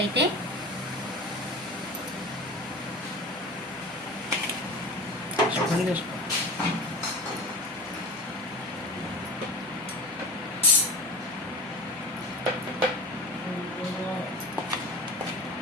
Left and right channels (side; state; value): both; normal; correlation 0.31